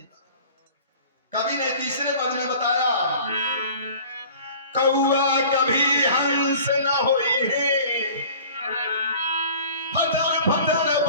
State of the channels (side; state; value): both; inverted; correlation -0.45